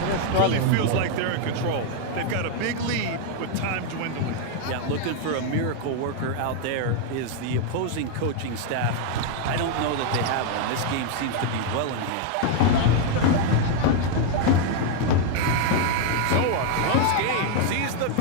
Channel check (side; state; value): both; different; correlation 0.00